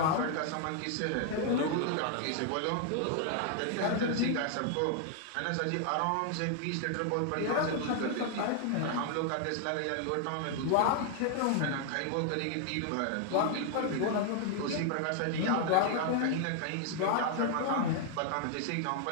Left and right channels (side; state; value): both; different; correlation 0.00